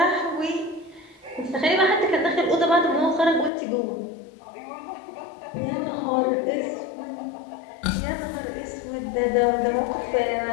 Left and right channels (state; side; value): drops out; right; at 3.5 s